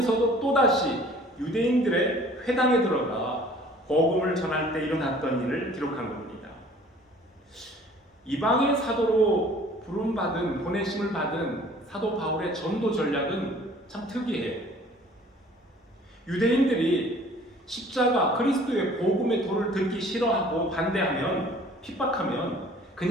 또다시 유대인들의 회당에 들어가 복음을 전할 때 일어났던 일을 기록한 겁니다. 이방의 사도로 부름받은, 보내심을 받은 사도 바울의 전도 전략은 참 특이해요. 유대인들이 십자가 그리스도의 복음의 도를 듣기 싫어하고 반대하면, 핍박하면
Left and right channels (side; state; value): both; normal; correlation 0.51